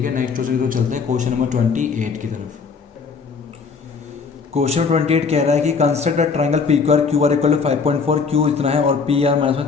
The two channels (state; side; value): quieter; right; 5.3 dB